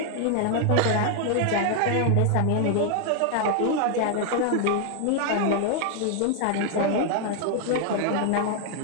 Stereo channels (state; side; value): different; both; correlation 0.00